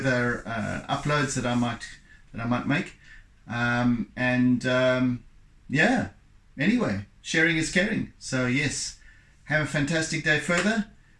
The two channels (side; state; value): both; identical; correlation 1.00